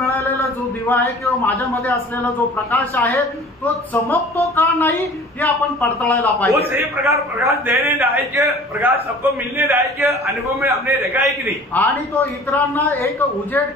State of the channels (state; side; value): normal; both; correlation 0.46